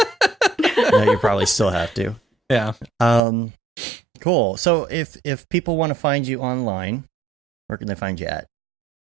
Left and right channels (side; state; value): left; drops out; at 3.2 s